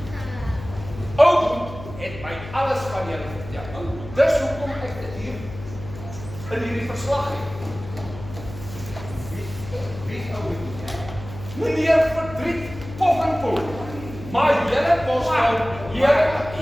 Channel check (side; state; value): left; noise; hum, 13 dB below the sound